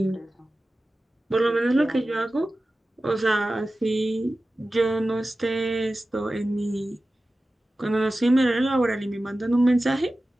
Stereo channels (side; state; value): both; normal; correlation 0.95